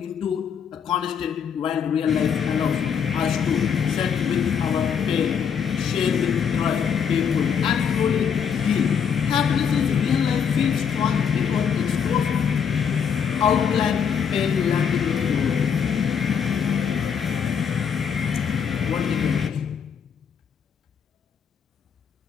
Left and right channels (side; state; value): right; quieter; 7.2 dB